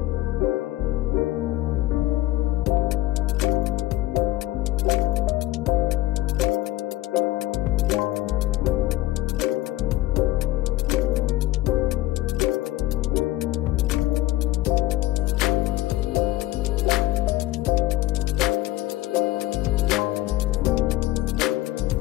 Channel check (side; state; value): right; quieter; 16.4 dB